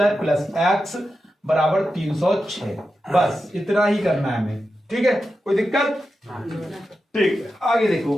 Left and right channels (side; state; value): both; normal; correlation 0.90